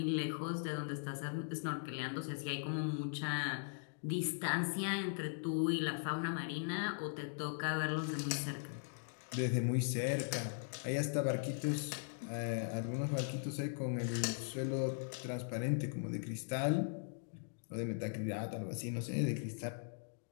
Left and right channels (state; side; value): silent; right; digital silence